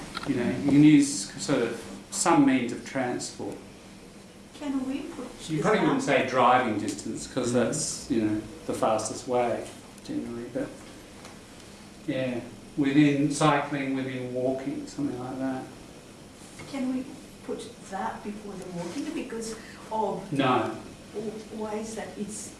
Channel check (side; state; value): both; identical; correlation 1.00